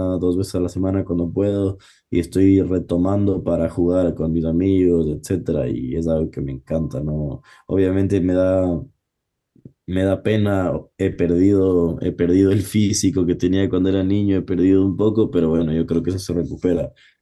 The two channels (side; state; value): both; identical; correlation 1.00